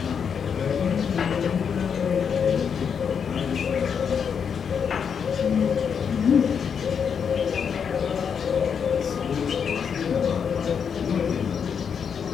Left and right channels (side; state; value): right; quieter; 7.0 dB